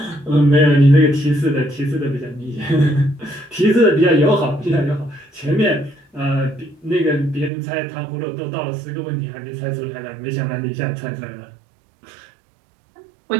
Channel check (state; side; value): drops out; left; at 7.5 s